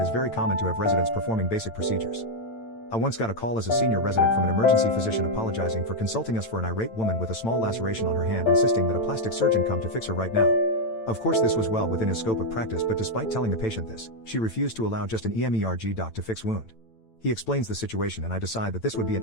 is very common to have residents performing basic procedures. I once got a call as a senior resident from an emergency physician apologizing for consulting us for an irate woman with a small laceration on her hand, insisting that a plastic surgeon come to fix her right now. Of course, this was well within his scope of practice, but despite telling the patient this, she refused to allow just an EMERG doc to fix wound. He explains the situation and I decide that this would be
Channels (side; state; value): right; late; 8.9 ms